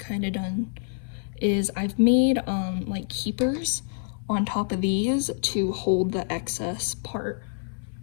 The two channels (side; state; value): right; silent; 58 dB below the other